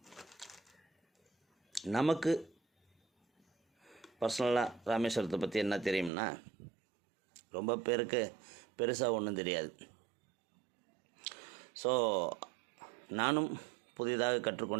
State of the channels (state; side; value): drops out; left; at 6.1 s